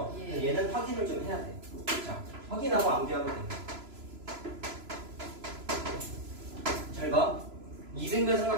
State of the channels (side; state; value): left; late; 3.0 ms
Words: 예. 얘는 확인을 좀 해야 돼. 자, 확인하고 암기하면 돼. 잘 봐. 이등변